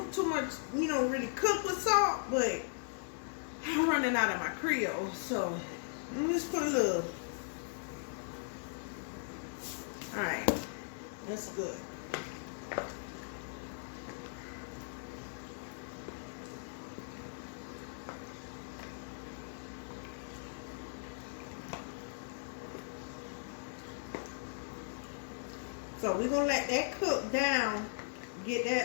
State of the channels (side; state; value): right; silent; digital silence